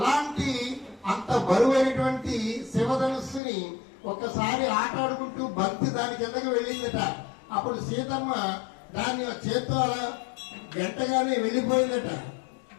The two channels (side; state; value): right; drops out; at 3.4 s